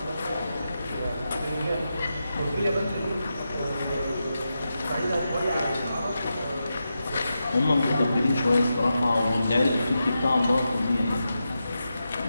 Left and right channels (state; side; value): inverted; both; correlation -0.89